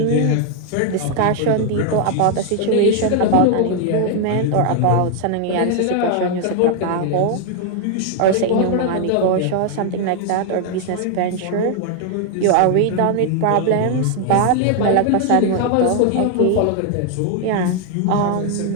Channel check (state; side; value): different; both; correlation 0.00